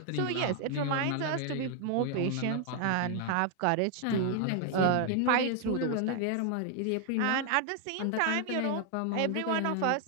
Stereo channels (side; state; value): both; different; correlation 0.00